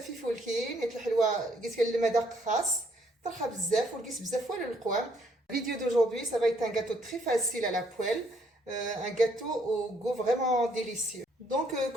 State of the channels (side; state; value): both; normal; correlation 0.68